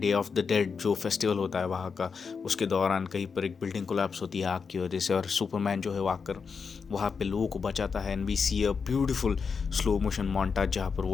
ऑफ द डेड जो फेस्टिवल होता है वहाँ का, उसके दौरान कहीं पर एक बिल्डिंग कोलैप्स होती है आग की वजह से, और सुपरमैन जो है वो आकर वहाँ पे लोगों को बचाता है। And we see a beautiful slow motion montage जहाँ पर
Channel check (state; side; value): quieter; right; 5.6 dB